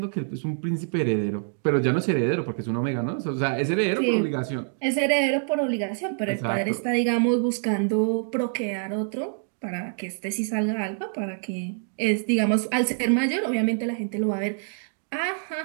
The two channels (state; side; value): silent; left; digital silence